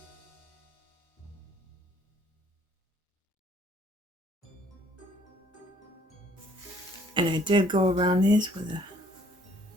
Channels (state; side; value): normal; both; correlation 0.61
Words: And I did go around these with a